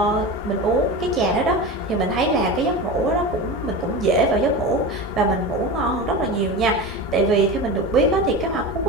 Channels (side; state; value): both; normal; correlation 0.27